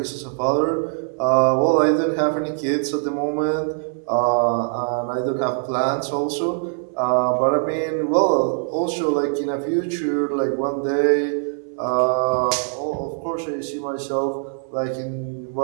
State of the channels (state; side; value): silent; left; digital silence